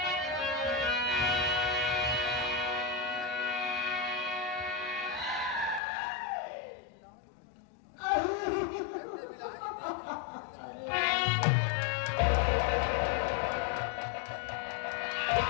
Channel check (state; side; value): drops out; right; at 5.8 s